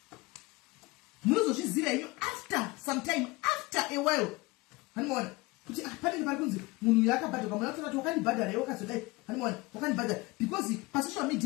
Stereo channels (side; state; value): right; quieter; 23.4 dB